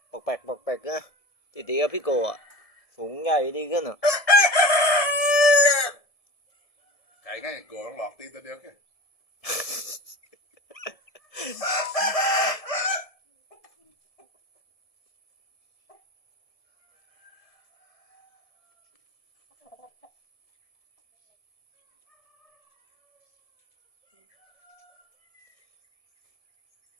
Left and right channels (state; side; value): late; right; 1.7 ms